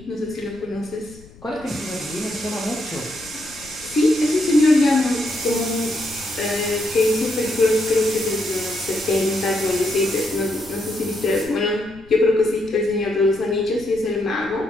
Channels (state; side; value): noise; left; rumble, 22 dB below the sound